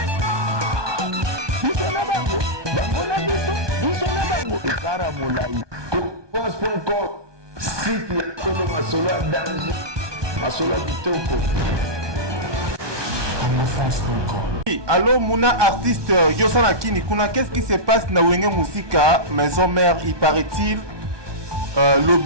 Ekara Moulaï. France.com. Site ya Kolo Masolo à danger. Masolo Kitoko. Allô Mouna artiste Yosana Kini Kuna, qu'est-ce qui se passe na Wenge Musika Maison Mère? Il paraît-il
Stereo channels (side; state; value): left; late; 1.2 ms